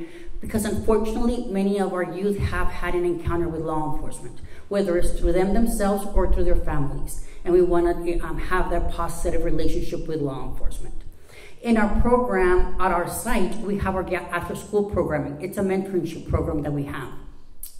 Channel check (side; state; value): both; identical; correlation 1.00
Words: because unfortunately, many of our youth have had an encounter with law enforcement, whether it's through them themselves or through their families. And we want to have that positive relationship with law enforcement. In our program at our site, we have our after-school programming. It's a mentorship program that we have.